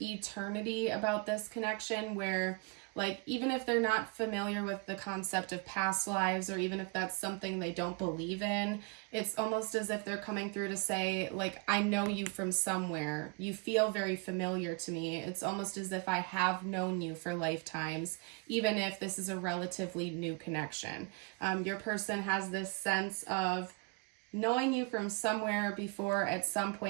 eternity about this connection where, like, even if they're not familiar with the concept of past lives, or even if that's something they don't believe in, it's almost as if they're coming through to say, like, I know you from somewhere. You feel very familiar to me. It's almost as if I have known you for lifetimes, even if this is a relatively new connection. Your person has this sense of knowing you from somewhere before, at some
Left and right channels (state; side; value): quieter; left; 28.9 dB